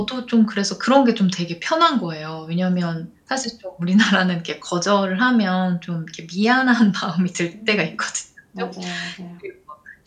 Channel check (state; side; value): identical; both; correlation 1.00